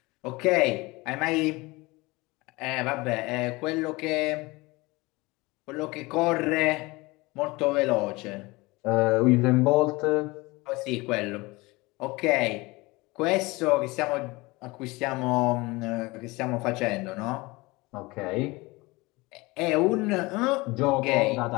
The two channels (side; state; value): right; quieter; 23.2 dB